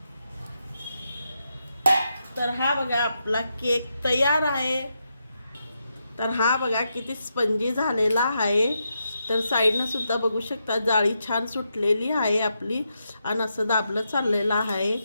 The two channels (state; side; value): inverted; both; correlation -0.84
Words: तर हा बघा आपला केक तयार आहे. तर हा बघा किती स्पंजी झालेला आहे. तर साईडनं सुद्धा बघू शकता जाळी छान सुटलेली आहे आपली आणि असं दाबलं चाललेलं आहे.